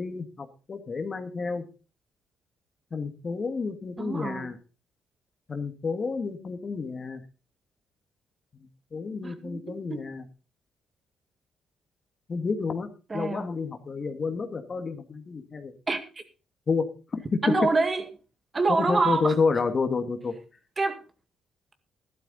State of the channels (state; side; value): normal; both; correlation 0.86